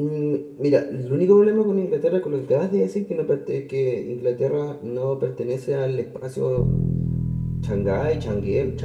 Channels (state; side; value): identical; both; correlation 1.00